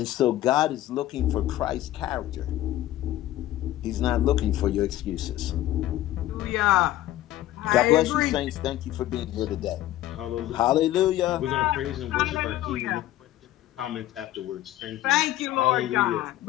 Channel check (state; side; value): quieter; right; 14.4 dB